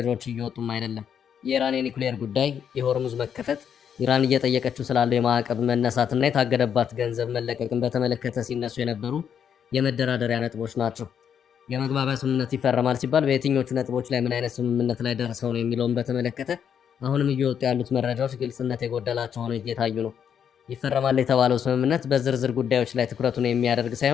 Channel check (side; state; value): right; quieter; 8.2 dB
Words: እየወጡም አይደለም። የኢራን የኒውክሌር ጉዳይ፣ የሆርሙዝ መከፈት፣ ኢራን እየጠየቀችው ስላለው የማዕቀብ መነሳትና የታገደባት ገንዘብ መለቀቅን በተመለከተ ሲነሱ የነበሩ የመደራደሪያ ነጥቦች ናቸው። የመግባቢያ ስምምነት ይፈረማል ሲባል በየትኞቹ ነጥቦች ላይ ምን አይነት ስምምነት ላይ ደርሰው ነው የሚለውን በተመለከተ አሁንም እየወጡ ያሉት መረጃዎች ግልጽነት የጎደላቸው ሆነው እየታዩ ነው። ይፈረማል የተባለው ስምምነት በዝርዝር ጉዳዮች ላይ ትኩረቱን የሚያደርግ